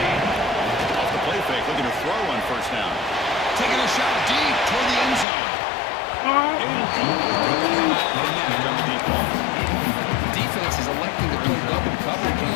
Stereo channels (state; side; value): drops out; right; at 5.2 s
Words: Taking a shot deep toward the end zone. Defense is electing to play double coverage on